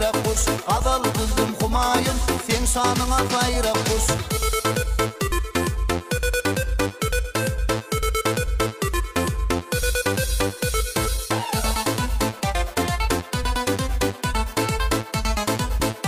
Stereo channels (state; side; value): identical; both; correlation 1.00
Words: kuş kadal kızdım kumayın sen şanına tayrap kuş